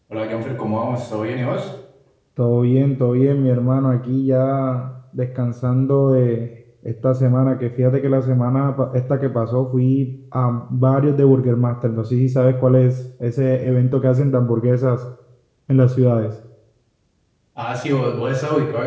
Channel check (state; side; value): identical; both; correlation 1.00